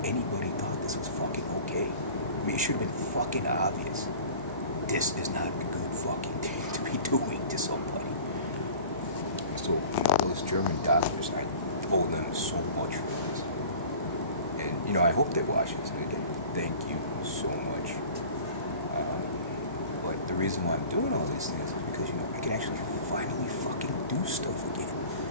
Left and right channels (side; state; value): both; inverted; correlation -0.42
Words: anybody thought this was fucking okay. I mean, it should have been fucking obvious. This is not a good fucking thing to be doing to somebody. So, those German doctors, I owe them so much for this. And, I hope they watch this. And again, thank you so much. But the reason why I'm doing all these things is because, I can actually finally fucking do stuff again.